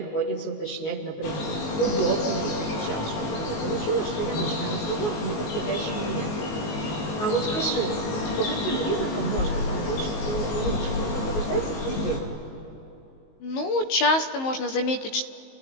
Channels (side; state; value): right; late; 19 ms